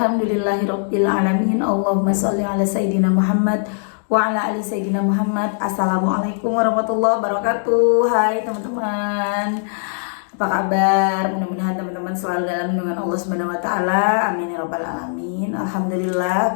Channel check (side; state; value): right; silent; digital silence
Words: alamin. Allahumma sholli ala sayidina Muhammad wa ala ali sayidina Muhammad. Assalamualaikum warahmatullahi wabarakatuh. Hai teman-teman, apa kabar? Mudah-mudahan teman-teman selalu dalam lindungan Allah Subhanahu wa taala. Amin ya rabbal alamin. Alhamdulillah,